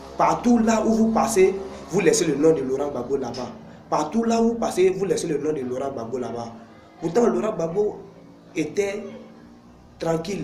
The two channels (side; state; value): both; identical; correlation 1.00